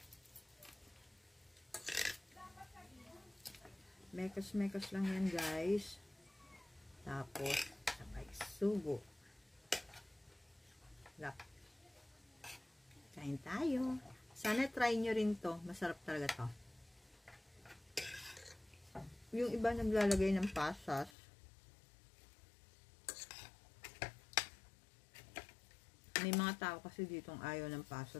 Mekos-mekos lang yan guys. Tapos, sabay sugo. Lap. Kain tayo. Sana try nyo rin to. Masarap talaga to. Yung iba naglalagay ng pasas. May mga tao kasi ditong ayaw ng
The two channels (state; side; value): drops out; right; at 21.2 s